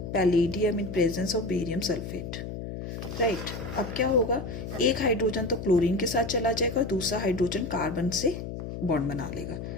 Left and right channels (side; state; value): left; noise; hum, 7 dB below the sound